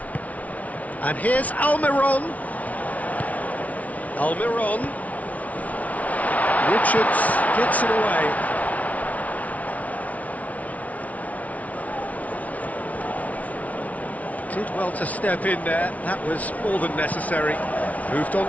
And here's Almiron. Almiron. Richards gets it away. Did well to step in there, that was more than necessary. Moved on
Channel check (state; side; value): late; right; 0.069 ms